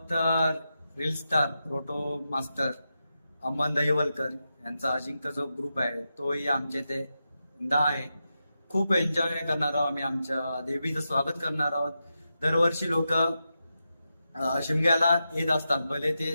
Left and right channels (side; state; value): both; inverted; correlation -0.89